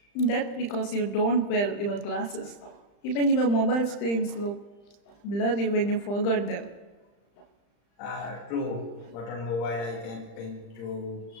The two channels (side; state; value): right; late; 35 ms